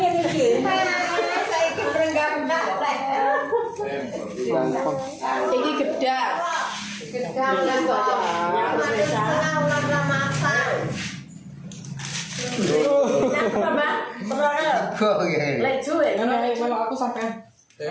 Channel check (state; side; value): identical; both; correlation 1.00